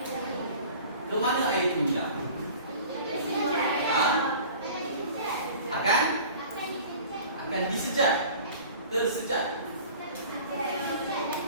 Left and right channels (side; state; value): both; inverted; correlation -0.44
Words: Ke mana air itu hilang? Akan disejat. Tersejat.